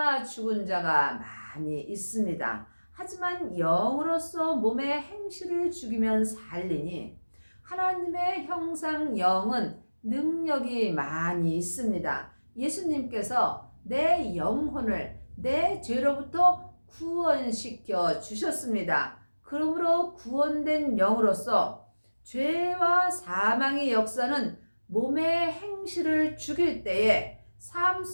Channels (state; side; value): inverted; both; correlation -1.00